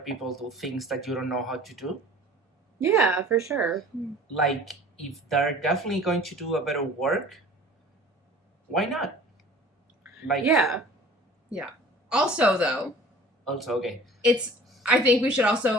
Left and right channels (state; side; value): normal; both; correlation 0.46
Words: do things that you don't know how to do. Yeah, for sure. Like, if they're definitely going to do a better work, why not? Like, Yeah. Also, though, also, okay. I think we should